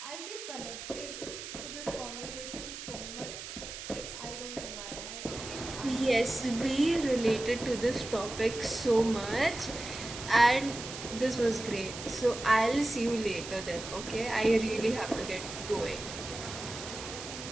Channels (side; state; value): right; noise; hiss, 9 dB below the sound